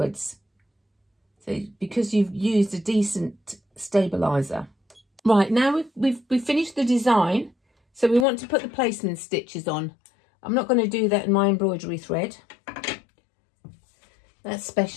So because you've used a decent stabiliser. Right, now we've finished the design. So we want to put the placement stitches on. I'm not going to do that in my embroidery thread. That's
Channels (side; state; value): right; drops out; at 8.2 s